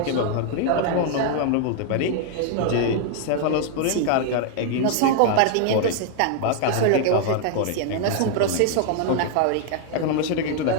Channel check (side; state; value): both; different; correlation 0.00